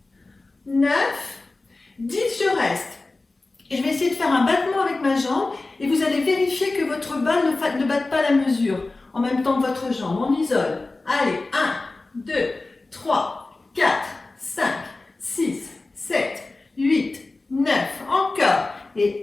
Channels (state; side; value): quieter; right; 3.3 dB